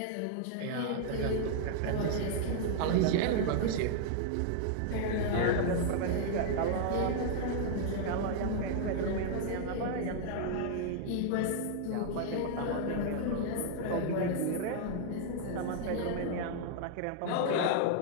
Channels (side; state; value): both; different; correlation -0.01